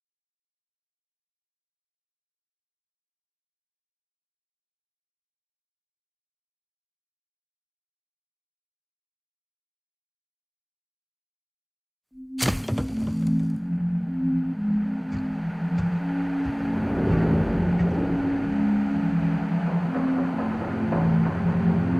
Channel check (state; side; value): identical; both; correlation 1.00